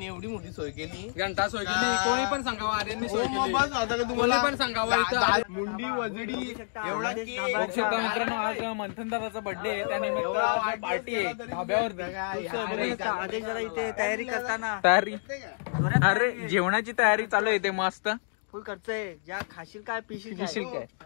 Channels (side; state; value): right; silent; digital silence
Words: एवढी मोठी सोय केली. घंटा सोय केली. कोणी पण सांगावं आर्यननी सोय केली. कोणी पण सांगावं. मुंडी वजडी एवढा बघू शकता मित्रांनो, आज मंथन दादाचा बर्थडे आहे. त्यानिमित्त आज पार्टी आहे धाब्यावरती. आदेश जरा इथे तयारी करताना. तयारी. अरे जेवणाची तयारी चालू आहे इथे मस्त. फुल खर्च आहे. ज्या खाशील काय पिशील काय.